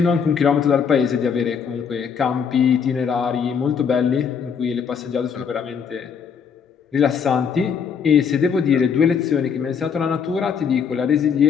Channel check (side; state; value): right; quieter; 6.7 dB